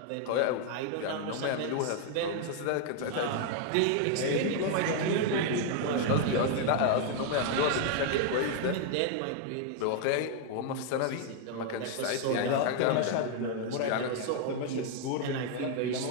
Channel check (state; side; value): different; both; correlation 0.00